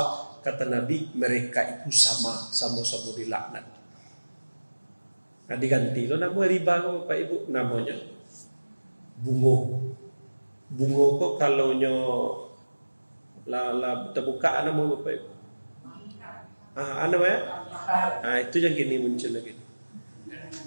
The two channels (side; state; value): both; inverted; correlation -1.00